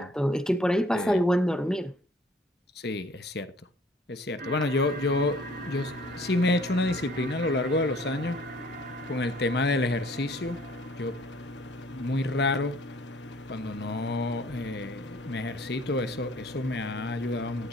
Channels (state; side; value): normal; both; correlation 0.56